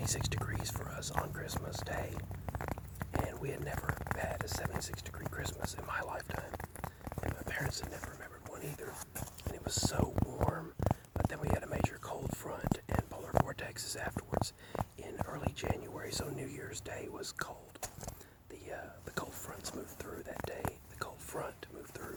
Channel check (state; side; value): identical; both; correlation 1.00